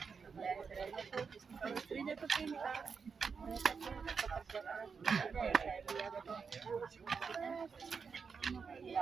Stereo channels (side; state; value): left; quieter; 5.6 dB